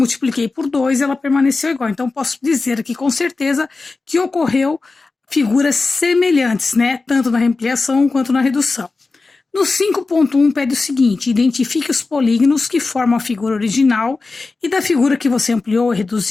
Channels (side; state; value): right; quieter; 3.8 dB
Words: por 2, ela permaneceu igual. Então, posso dizer aqui com certeza que ocorreu figuras semelhantes, né? Tanto na ampliação quanto na redução. No 5.1 pede o seguinte, identifique os polígonos que formam a figura original e da figura que você ampliou e